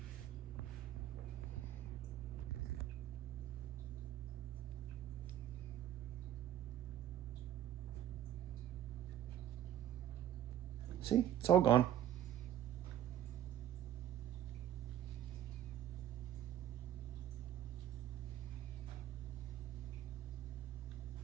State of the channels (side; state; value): left; quieter; 11.4 dB